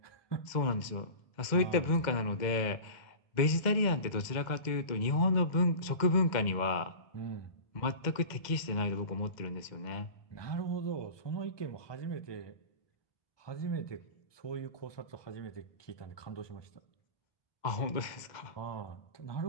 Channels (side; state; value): right; late; 2.0 ms